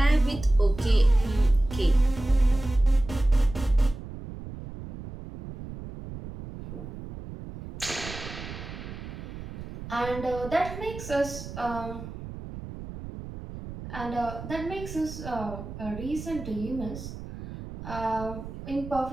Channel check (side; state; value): right; noise; rumble, 11 dB below the sound